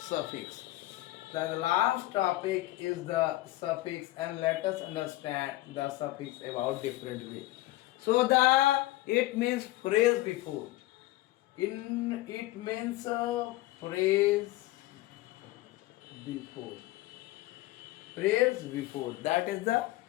The last topic is the suffix, and let us understand the suffix about different way. So it means phrase before. It means phrase before. Phrase before. That is the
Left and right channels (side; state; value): right; quieter; 17.7 dB